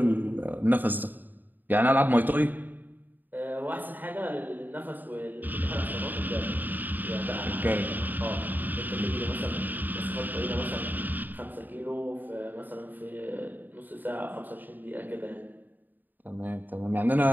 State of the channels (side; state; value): left; late; 0.088 ms